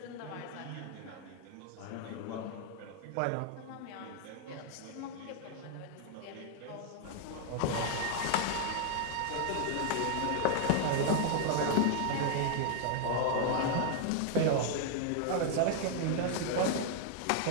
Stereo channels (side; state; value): both; different; correlation 0.00